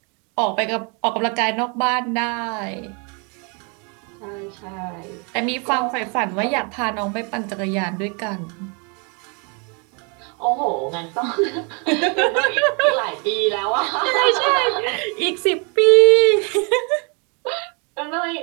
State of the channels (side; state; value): left; quieter; 34.5 dB